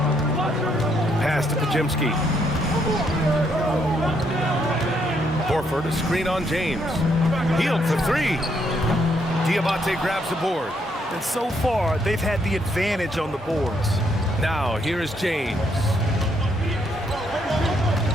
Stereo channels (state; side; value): normal; both; correlation 0.73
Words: Pass to Pajemski. Horford, a screen on James. Hield for 3. Diabate grabs the board. And so far, they've had the advantage on the boards. Now, here is James.